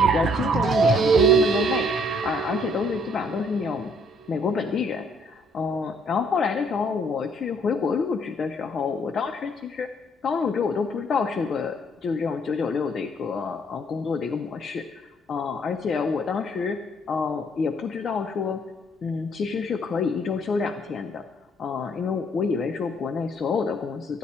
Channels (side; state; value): both; normal; correlation 0.65